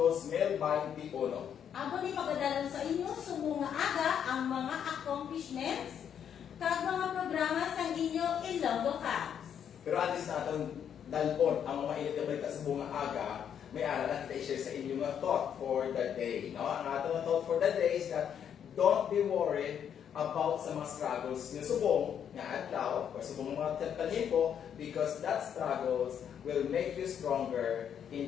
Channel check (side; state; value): right; quieter; 8.6 dB